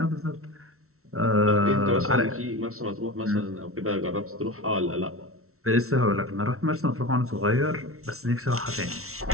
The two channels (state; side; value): late; left; 0.63 ms